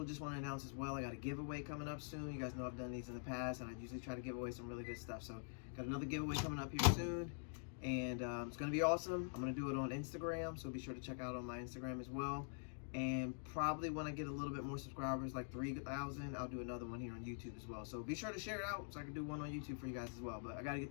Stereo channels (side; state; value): right; silent; digital silence